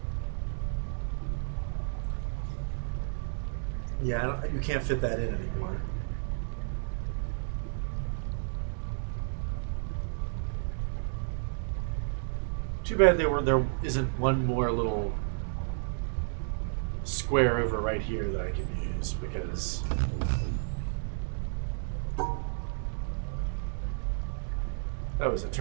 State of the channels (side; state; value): left; silent; digital silence